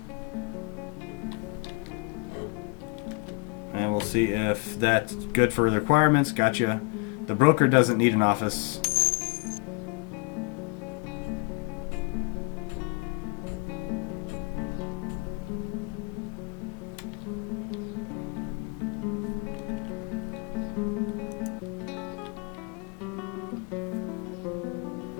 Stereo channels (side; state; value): right; quieter; 30.1 dB